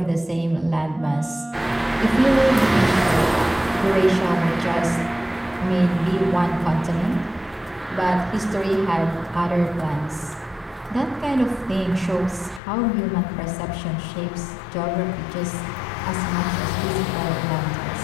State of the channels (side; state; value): right; drops out; at 12.6 s